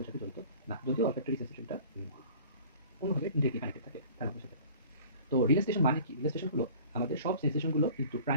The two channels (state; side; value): inverted; both; correlation -0.46